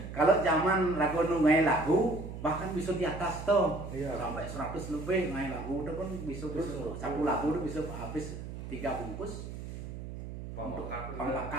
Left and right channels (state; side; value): noise; right; hum, 9 dB below the sound